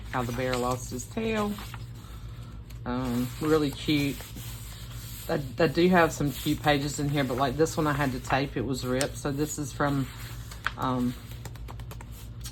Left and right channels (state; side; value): identical; both; correlation 1.00